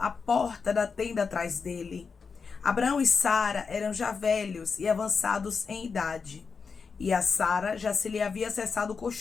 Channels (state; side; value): quieter; right; 5.3 dB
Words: porta da tenda atrás dele. Abraão e Sara eram já velhos e avançados em idade, e a Sara já se lhe havia cessado o